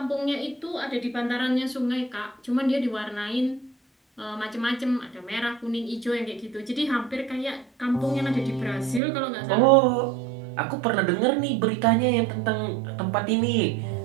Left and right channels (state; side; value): drops out; left; at 9.0 s